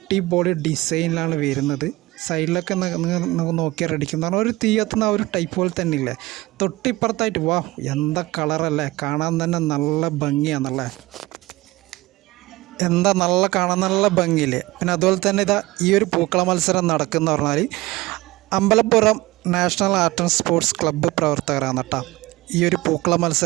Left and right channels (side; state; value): left; quieter; 19.7 dB